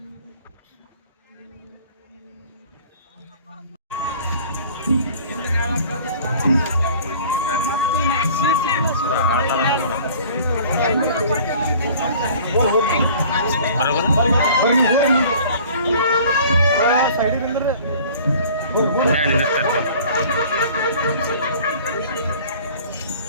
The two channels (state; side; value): inverted; both; correlation -0.48